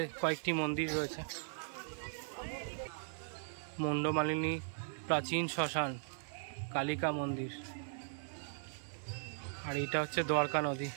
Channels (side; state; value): left; silent; 52 dB below the other